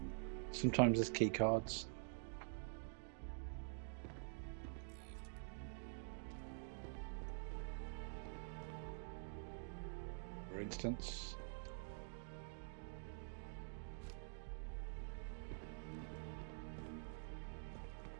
sometimes there's key cards. For instance.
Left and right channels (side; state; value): left; silent; digital silence